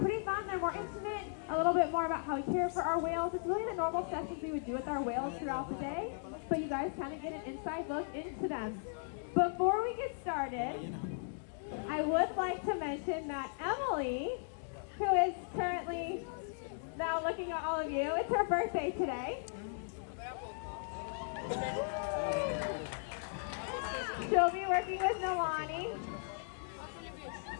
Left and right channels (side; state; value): right; silent; digital silence